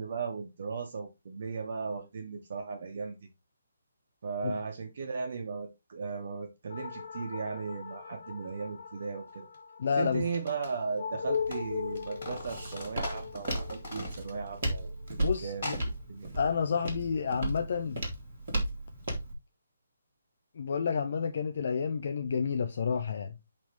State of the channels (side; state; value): both; inverted; correlation -0.78